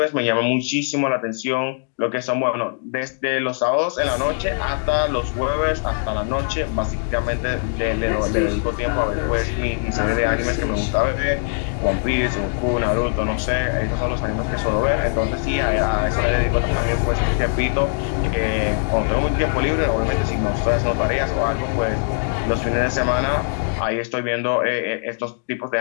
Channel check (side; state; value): right; silent; digital silence